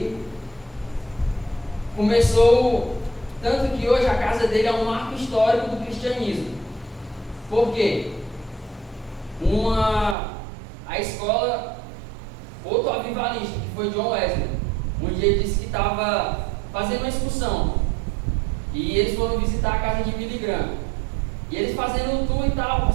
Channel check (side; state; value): left; drops out; at 10.2 s